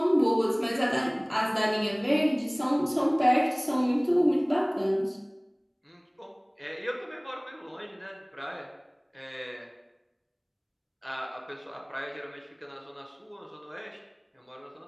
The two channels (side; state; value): both; identical; correlation 1.00